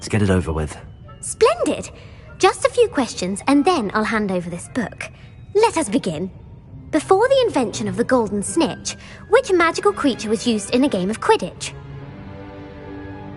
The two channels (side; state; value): both; identical; correlation 1.00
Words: get it over with. Splendid! Just a few questions and then I'll hand over this book. Let us begin. Before the invention of the golden snitch, which magical creature was used in a game of Quidditch?